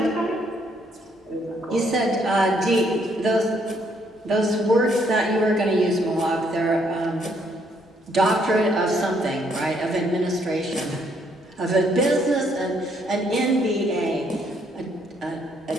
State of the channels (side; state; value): both; normal; correlation 0.70